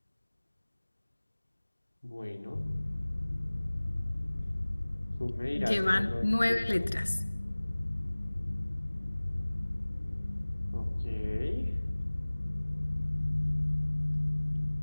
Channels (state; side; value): inverted; both; correlation -1.00